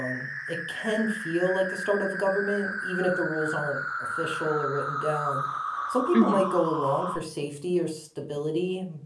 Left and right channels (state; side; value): identical; both; correlation 1.00